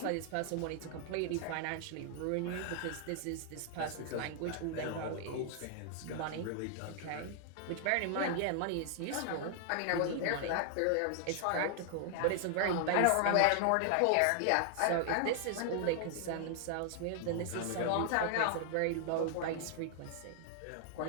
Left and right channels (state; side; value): different; both; correlation 0.00